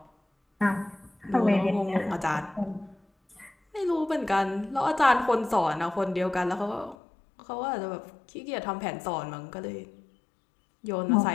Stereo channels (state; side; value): drops out; right; at 7.0 s